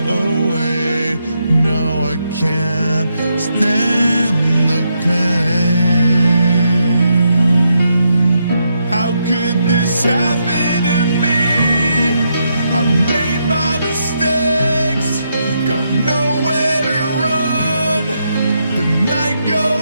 away. No, I can't stand the pain. How could this happen to me? I made my mistakes, got nowhere to run. The night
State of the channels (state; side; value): inverted; both; correlation -0.80